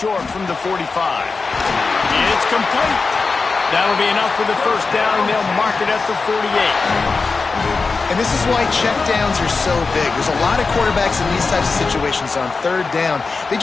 from the 45. It's complete. That'll be enough for the first down, and they'll mark it at the 48. And this is why checkdowns are so big. There's a lot of quarterbacks in these types of situations on 3rd down. They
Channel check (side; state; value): right; quieter; 4.3 dB